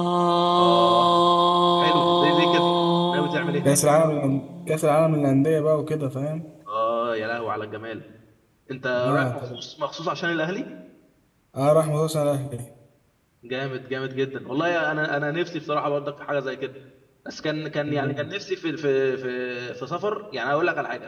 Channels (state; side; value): identical; both; correlation 1.00